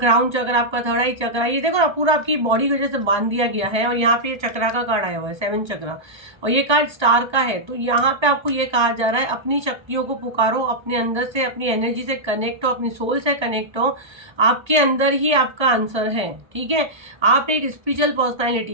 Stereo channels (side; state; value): left; late; 1.3 ms